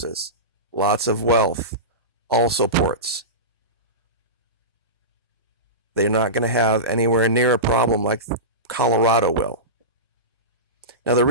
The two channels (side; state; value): both; normal; correlation -0.19